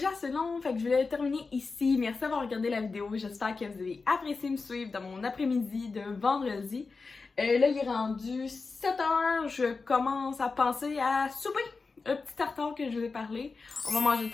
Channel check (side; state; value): right; quieter; 4.3 dB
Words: assez long, fait que je vais le terminer ici. Merci d'avoir regardé la vidéo. J'espère que vous avez apprécié me suivre dans mon après-midi de vendredi. Là, il est rendu 7h. Je commence à penser à souper. Un petit tartare que je vous ai parlé. On va manger